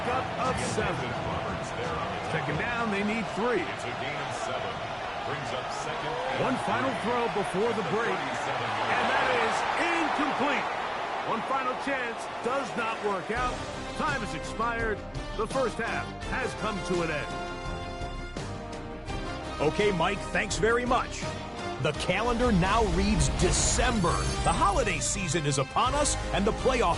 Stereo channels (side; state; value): both; identical; correlation 1.00